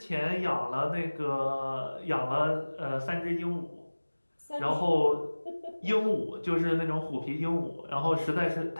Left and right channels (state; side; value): inverted; both; correlation -1.00